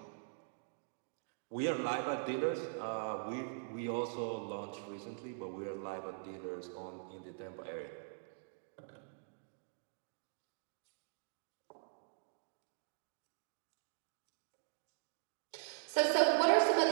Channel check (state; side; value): silent; left; digital silence